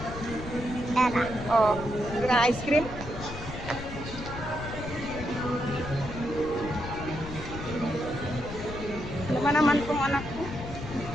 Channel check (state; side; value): noise; left; rumble, 9 dB below the sound